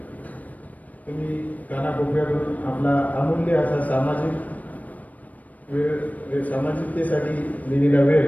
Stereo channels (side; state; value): right; late; 0.073 ms